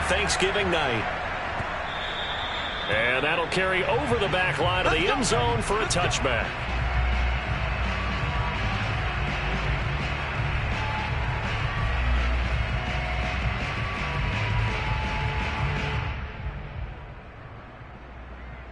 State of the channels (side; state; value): both; identical; correlation 1.00